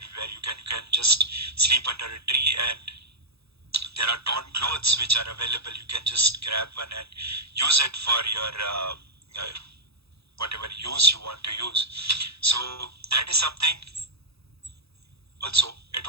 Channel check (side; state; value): left; late; 0.78 ms